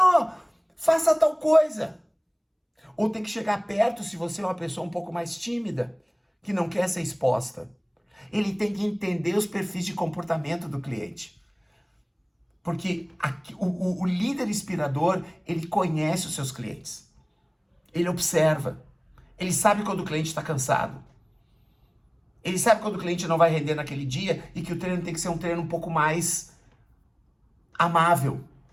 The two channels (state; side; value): identical; both; correlation 1.00